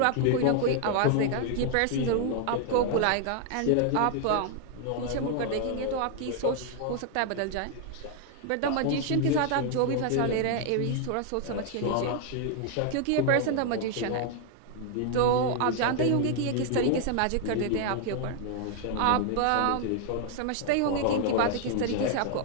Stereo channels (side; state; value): both; different; correlation 0.00